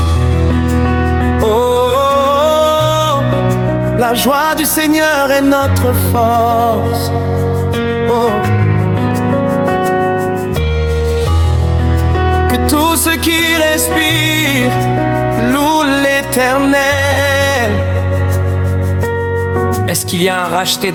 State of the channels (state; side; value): identical; both; correlation 1.00